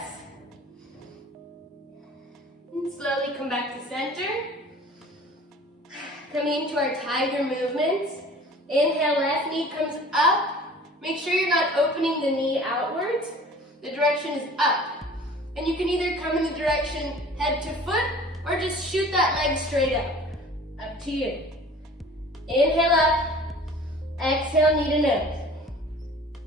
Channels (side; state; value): both; normal; correlation 0.46